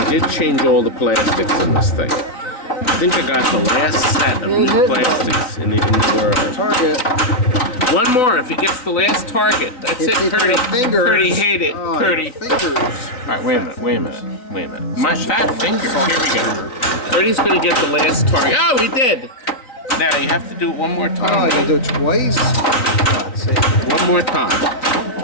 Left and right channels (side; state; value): right; late; 3.9 ms